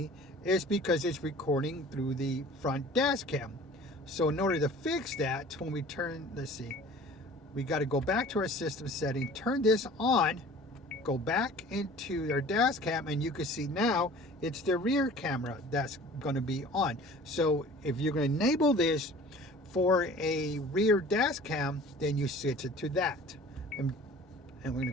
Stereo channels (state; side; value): normal; both; correlation 0.45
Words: is because it's recording through the front dash cam. So in order to fix that, when we turn, let's see, we got to go back to our system setting, turn this on, go back into our dash cam, and you can see now it's the rear camera that's going to be on. So if you're going to enable this for a rear dash cam, then you switch it to that. And we're going to